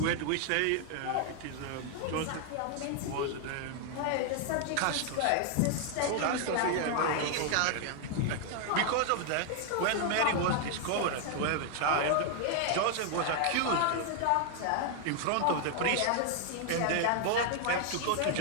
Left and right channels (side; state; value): both; different; correlation 0.00